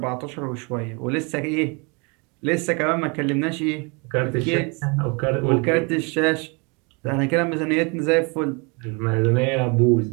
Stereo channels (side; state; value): left; quieter; 31.4 dB